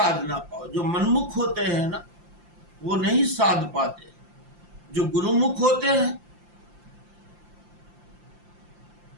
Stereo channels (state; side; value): late; left; 5.7 ms